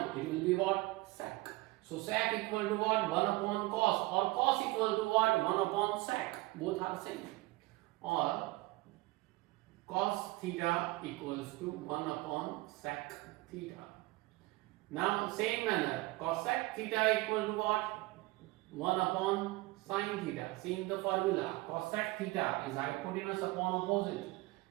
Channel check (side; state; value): left; quieter; 21.2 dB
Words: It will be what? Sec. So sec equal to what? 1 upon cos. Or cos equal to what? 1 upon sec. Both are same. Or cos theta equals to 1 upon sec theta. Now same manner, cosec theta equal to what? 1 upon sin theta. Seeing the formula, cosec theta is hypotenuse upon opposite.